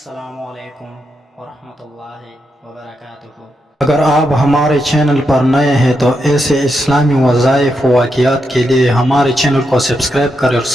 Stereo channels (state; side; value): normal; both; correlation 0.84